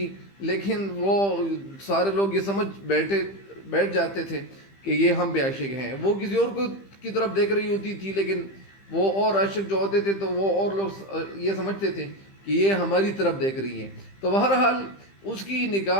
لیکن وہ سارے لوگ یہ سمجھ بیٹھ جاتے تھے کہ یہ ہم پہ عاشق ہیں. وہ کسی اور کی طرف دیکھ رہی ہوتی تھی، لیکن وہ اور عاشق جو ہوتے تھے تو وہ اور لوگ یہ سمجھتے تھے کہ یہ ہماری طرف دیکھ رہی ہیں. تو بہرحال اس کی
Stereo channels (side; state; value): right; late; 15 ms